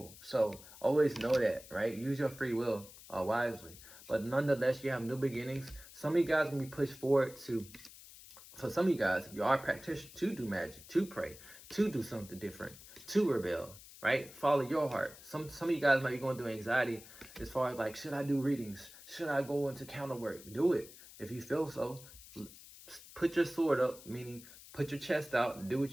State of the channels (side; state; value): left; noise; hiss, 18 dB below the sound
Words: So always know that, right? Use your free will wisely. But nonetheless, you have new beginnings. Some of you guys can be pushed forward to, for some of you guys, if you are a practitioner, to do magic, to pray, to do something different, to rebel, right? Follow your heart. Some of you guys might be going through anxiety as far as like, should I do readings? Should I go into counter work? Do it if you feel so. Put your sword up, meaning put your chest out and do